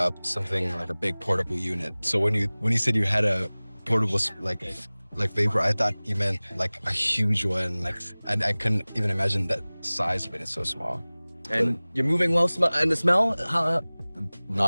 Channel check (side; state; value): both; inverted; correlation -1.00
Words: something like a big portable unit. So when you said you had a portable like vapor, I thought you meant like a huge one. And I couldn't even imagine that size of it. It's so small. And you're moving well, and the smell?